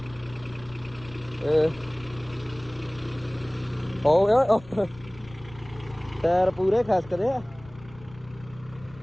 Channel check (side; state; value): left; noise; rumble, 20 dB below the sound